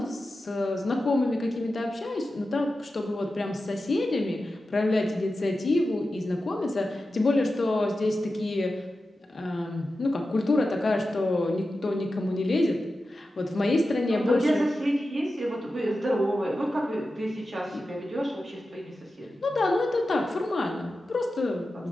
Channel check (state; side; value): normal; both; correlation 0.92